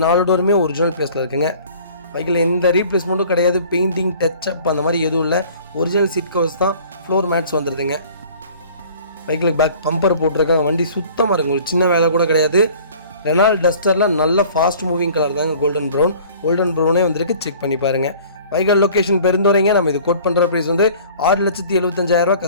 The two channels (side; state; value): both; inverted; correlation -0.49